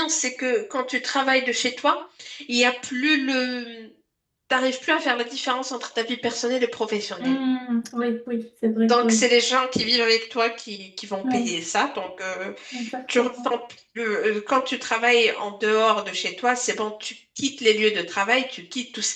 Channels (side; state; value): both; identical; correlation 1.00